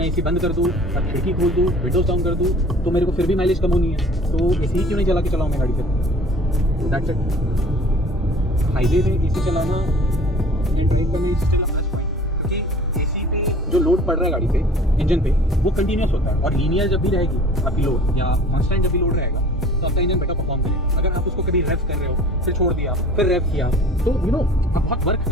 एसी बंद कर दूँ और खिड़की खोल दूँ, विंडोज डाउन कर दूँ, तो मेरे को फिर भी माइलेज कम होनी है, तो एसी क्यों नहीं चला के चलाऊँ मैं गाड़ी फिर। That's it. हाईवे में एसी चलाना, ड्राइव करना एसी चलाना बेस्ट पॉइंट, क्योंकि एसी पे जो लोड पड़ रहा है गाड़ी पे, इंजन पे, वो कंटिन्यूस होता है, और लीनियर जब भी रहेगी आपकी लोड या कॉन्स्टेंट जब भी लोड रहेगा तो आपका इंजन बेटर परफॉर्म करेगा। अगर आप उसको कभी रेव कर रहे हो, फिर छोड़ दिया, फिर रेव किया, तो यू नो आप बहुत वर्क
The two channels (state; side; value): normal; both; correlation 0.47